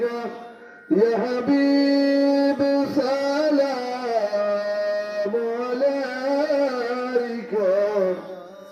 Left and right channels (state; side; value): identical; both; correlation 1.00